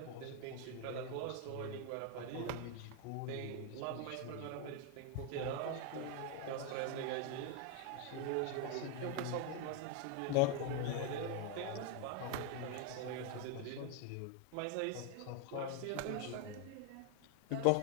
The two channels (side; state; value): both; different; correlation 0.01